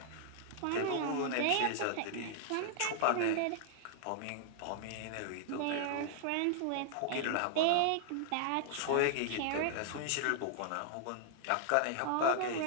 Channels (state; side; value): different; both; correlation -0.01